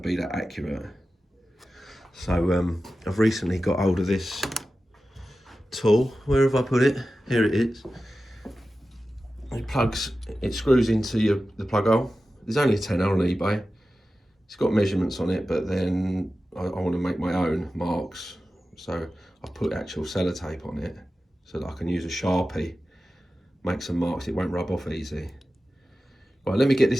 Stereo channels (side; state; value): both; normal; correlation 0.94